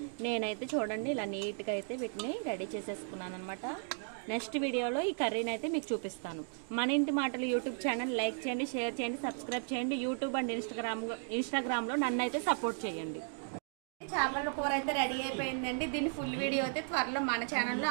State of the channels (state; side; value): silent; left; 54 dB below the other